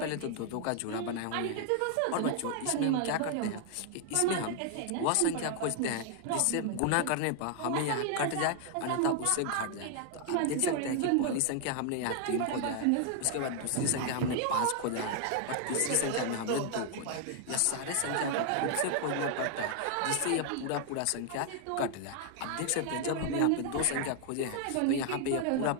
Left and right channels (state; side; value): different; both; correlation 0.00